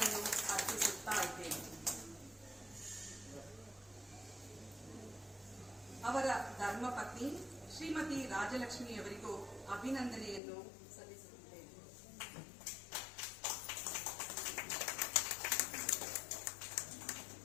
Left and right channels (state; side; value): drops out; right; at 10.4 s